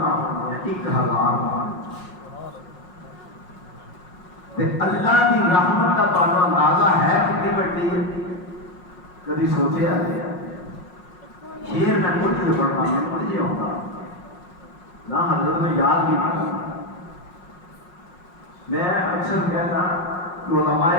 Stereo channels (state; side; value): late; right; 5.5 ms